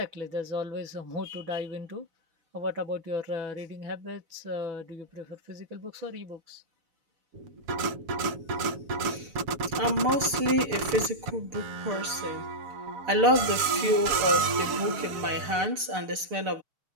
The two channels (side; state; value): left; late; 6.7 ms